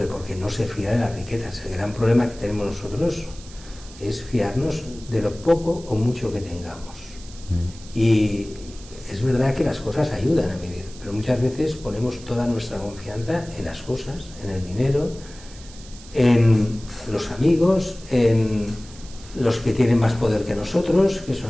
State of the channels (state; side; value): noise; right; hiss, 19 dB below the sound